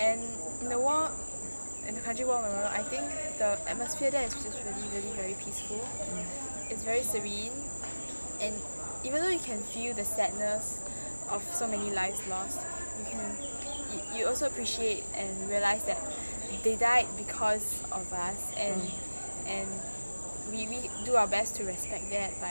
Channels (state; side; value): inverted; both; correlation -1.00